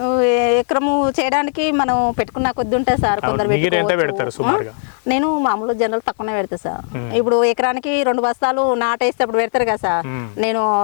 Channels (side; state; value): right; silent; digital silence